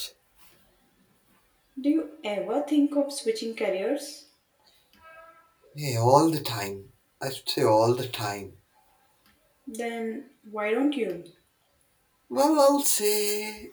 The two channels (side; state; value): both; identical; correlation 1.00